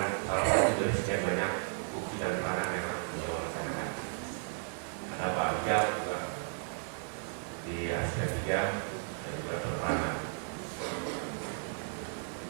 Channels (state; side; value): silent; left; 55 dB below the other